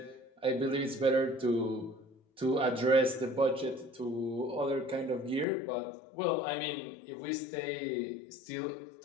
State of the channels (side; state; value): right; drops out; at 5.5 s